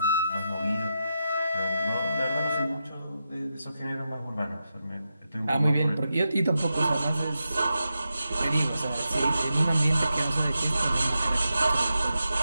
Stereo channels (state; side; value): inverted; both; correlation -0.88